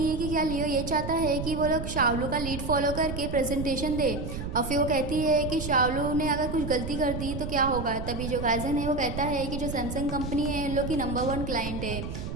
है कि क्या लियो ये चाहता है कि वो लोग शाओलू का लीड फॉलो करके प्रेजेंटेशन दे, और फिर वो कहती है कि शाओलू ने अगर कुछ गलती कर दी तो क्या होगा। तभी जो गाइजन है वो कहता है कि जो सैमसंग कंपनी है इन लोग की नंबर 1 क्लाइंट है,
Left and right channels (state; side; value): noise; right; rumble, 6 dB below the sound